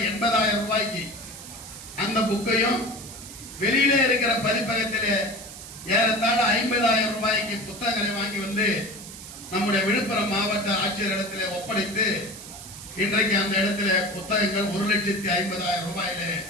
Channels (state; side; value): noise; right; hiss, 13 dB below the sound